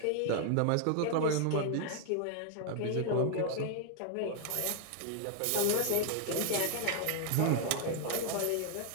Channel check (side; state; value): both; different; correlation 0.00